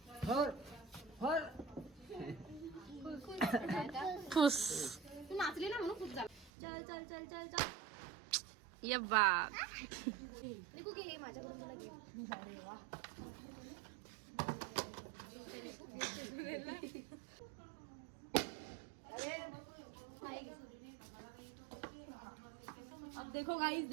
फुस. तू नाचली ना म्हणून खूप झालं. चल चल चल चल चल. ये बाप. निकू घे माझ्याकडून तुला घे. अब देखो गाइस,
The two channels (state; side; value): drops out; left; at 6.5 s